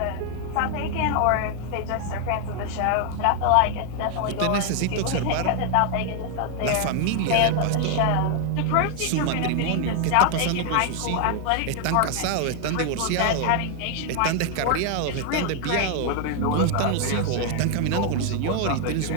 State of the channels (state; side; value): different; both; correlation 0.00